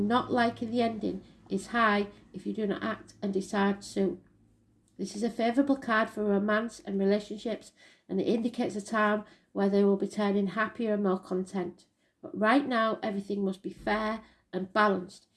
liking the ending is high if you do not act and decide soon. This is a favourable card for romance and relationships, and it indicates a time where they will be turning happier and more content. But right now, everything must be fair and balanced.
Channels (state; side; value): identical; both; correlation 1.00